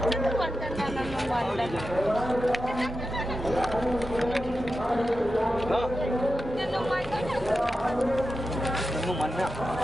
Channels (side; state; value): both; normal; correlation 0.91